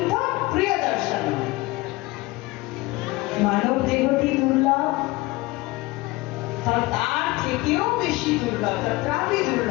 প্রিয় দর্শন। মানব দেহটি দুর্লভ, তার থেকেও বেশি দুর্লভ, তত্রাপি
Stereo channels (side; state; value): right; quieter; 21.1 dB